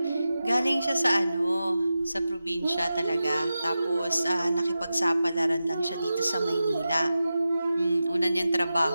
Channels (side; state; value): both; inverted; correlation -0.92